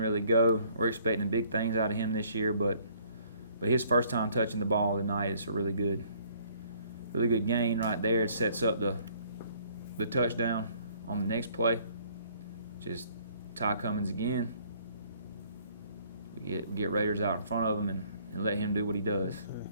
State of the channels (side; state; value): both; inverted; correlation -0.61